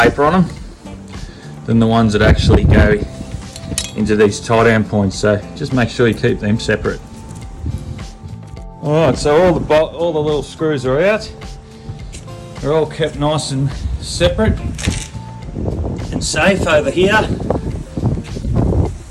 on them than the ones that actually go into these tie down points. So just make sure you keep them separate. Alright, so all the little screws are out. They're all kept nice and separate and safe over here.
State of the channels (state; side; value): identical; both; correlation 1.00